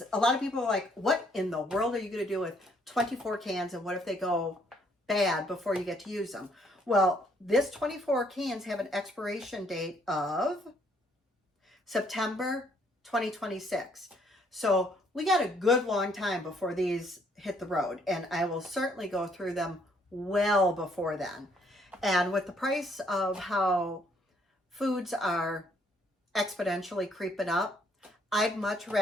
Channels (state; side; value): normal; both; correlation 0.67